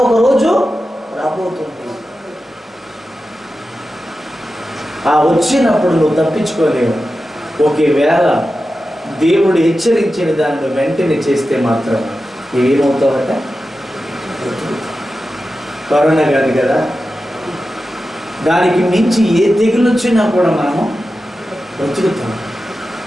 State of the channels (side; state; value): both; normal; correlation 0.92